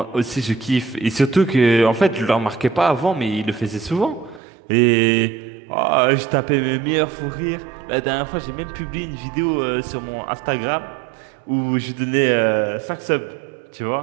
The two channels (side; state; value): left; drops out; at 4.4 s